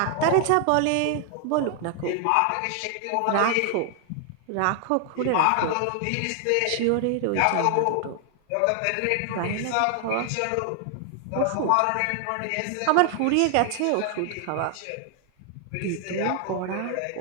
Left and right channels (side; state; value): both; different; correlation 0.00